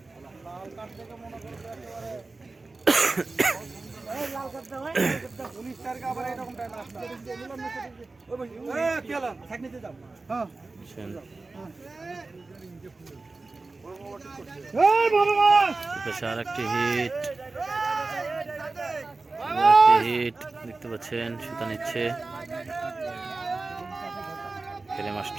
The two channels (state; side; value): quieter; left; 3.5 dB